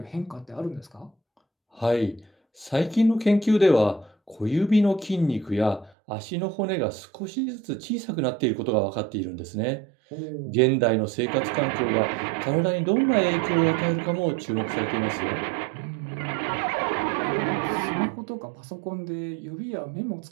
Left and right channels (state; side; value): drops out; left; at 5.9 s